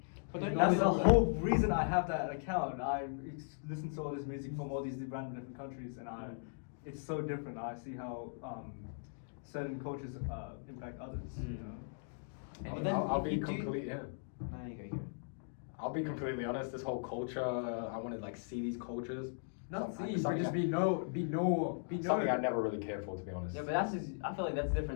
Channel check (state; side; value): silent; right; digital silence